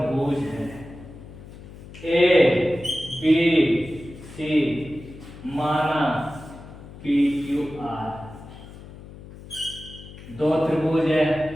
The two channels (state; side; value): noise; left; hum, 16 dB below the sound